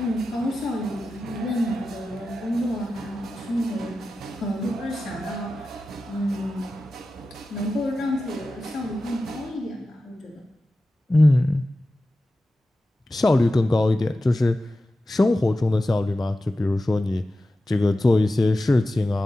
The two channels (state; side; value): normal; both; correlation 0.93